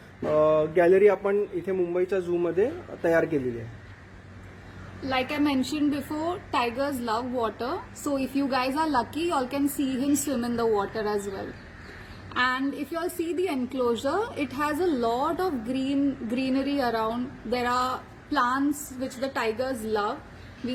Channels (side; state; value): both; identical; correlation 1.00